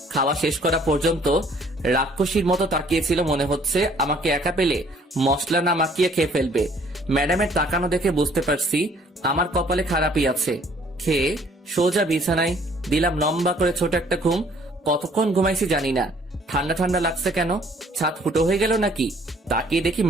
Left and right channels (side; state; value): both; normal; correlation 0.59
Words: খাওয়া শেষ করা পর্যন্ত রাক্ষসীর মতো তাকিয়েছিল, মনে হচ্ছে আমাকে একা পেলে মশলা না মাখিয়ে খেয়ে ফেলবে। ম্যাডামের তাকানো দেখে বুঝতে পারছি আমার কপালে খারাপই আছে। খেয়ে সোজা বিছানায় দিলাম লম্বা করে ছোট একটা ঘুম। কতক্ষণ ঘুমাইছি জানি না। ঠান্ডা ঠান্ডা লাগছে কেন? ছাদ ফুটো হয়ে গেল নাকি? তাকিয়ে দেখি